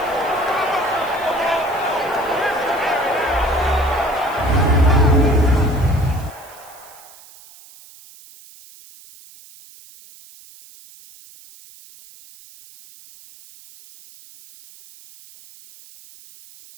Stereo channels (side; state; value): right; noise; hiss, 22 dB below the sound